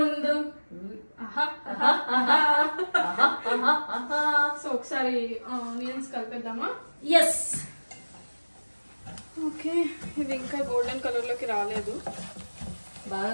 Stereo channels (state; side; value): inverted; both; correlation -1.00